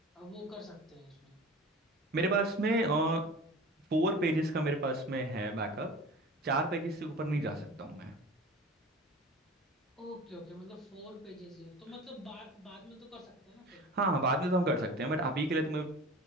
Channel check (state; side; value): normal; both; correlation 0.38